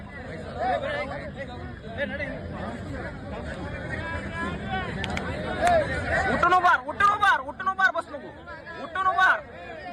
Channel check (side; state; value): both; identical; correlation 1.00